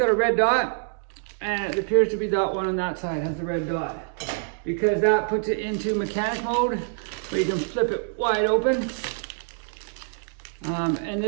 a red dot, and it appears to be that one on that side has the red dot, because that puts it into mechanic mode, where you can flip it wide open, and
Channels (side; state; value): left; silent; digital silence